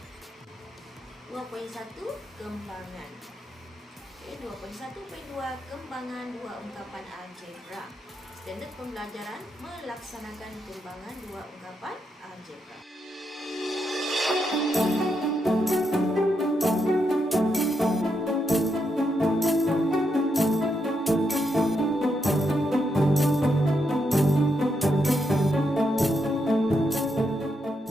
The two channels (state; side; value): normal; both; correlation 0.81